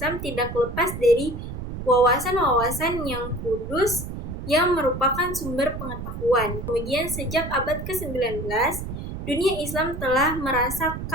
tidak lepas dari wawasan-wawasan yang kudus yang merupakan sumber pengetahuan. Kemudian sejak abad ke-19, dunia Islam telah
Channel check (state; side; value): noise; right; rumble, 7 dB below the sound